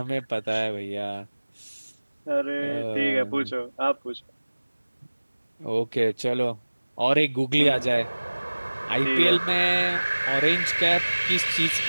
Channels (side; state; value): both; inverted; correlation -1.00